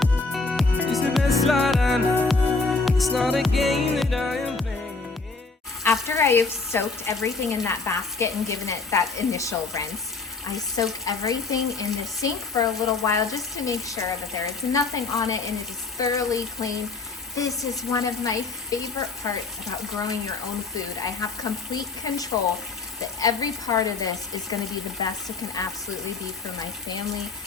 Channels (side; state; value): right; quieter; 4.0 dB